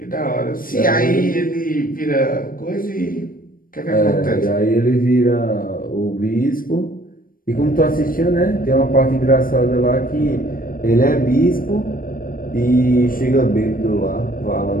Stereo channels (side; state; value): right; late; 0.41 ms